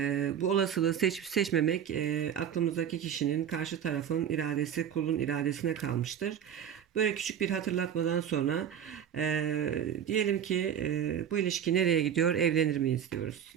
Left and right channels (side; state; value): left; quieter; 9.0 dB